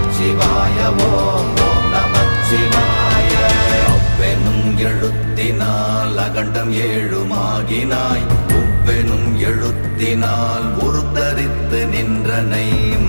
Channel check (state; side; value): inverted; both; correlation -1.00